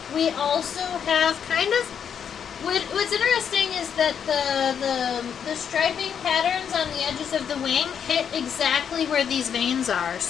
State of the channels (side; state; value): right; quieter; 7.8 dB